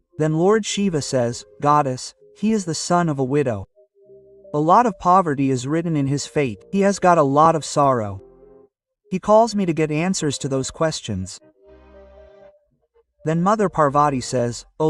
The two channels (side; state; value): both; identical; correlation 1.00